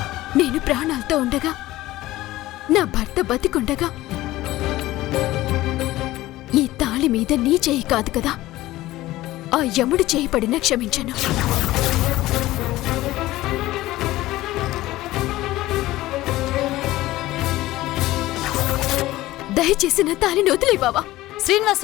నేను ప్రాణాలతో ఉండగా, నా భర్త బతికుండగా ఈ తాళి మీద నీ చేయి కాదు కదా, ఆ యముడు చేయి పడినా క్షమించను. దయచేసి నా తాళిని వదిలే బావా.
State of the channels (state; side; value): quieter; right; 16.9 dB